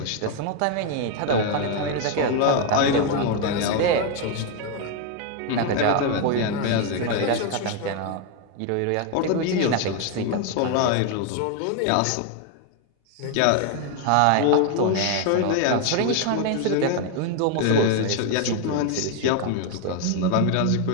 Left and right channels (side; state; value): both; different; correlation 0.01